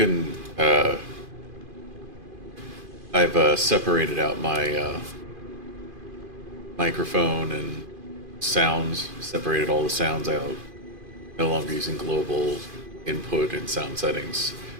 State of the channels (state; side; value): late; left; 2.5 ms